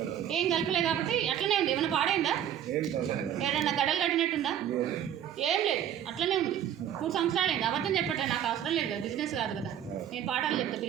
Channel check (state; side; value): quieter; left; 10.1 dB